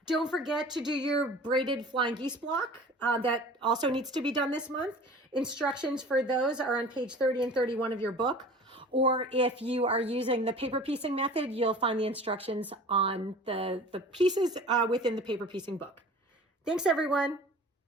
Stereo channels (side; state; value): both; normal; correlation 0.42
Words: Don't forget to do your braided flying geese block. That also needs to be done this month. Instructions for those are on page 30 and 31 of your book. Or if you are using the paper piecing method, you'll find the instructions on the pieces within the paper piecing book. Thanks, everyone.